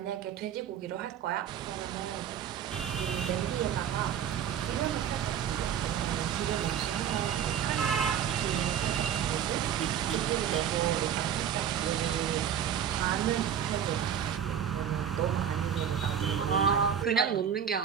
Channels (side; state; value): left; quieter; 8.9 dB